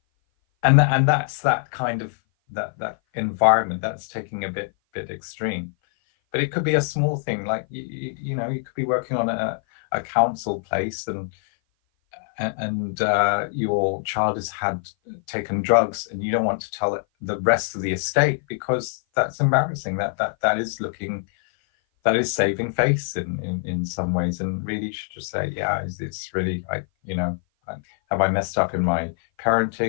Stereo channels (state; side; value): silent; right; 57 dB below the other